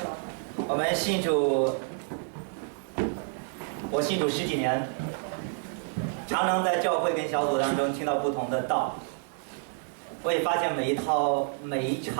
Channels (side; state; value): left; silent; 58 dB below the other